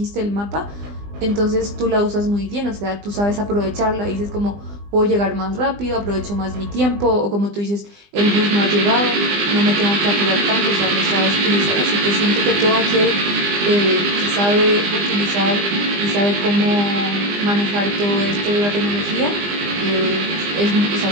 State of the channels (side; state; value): left; late; 20 ms